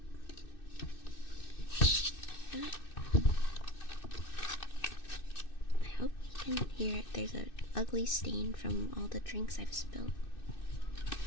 I hope you can hear it. There's an ugly stain from all the drinks I've spilled.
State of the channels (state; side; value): late; right; 2.6 ms